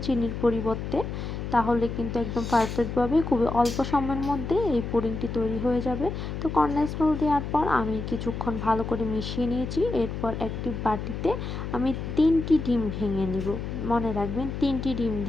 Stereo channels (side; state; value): left; noise; hum, 5 dB below the sound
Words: চিনির পরিবর্তে। তাহলে কিন্তু একদম পারফেক্টভাবে খুবই অল্প সময়ের মধ্যে এই পুডিংটি তৈরি হয়ে যাবে। তো কনডেন্স মিল্ক দেওয়ার পর আমি কিছুক্ষণ ভালো করে মিশিয়ে নিয়েছি। এরপর একটি বাটিতে আমি 3টি ডিম ভেঙে নিব। মনে রাখবেন 3টি ডিম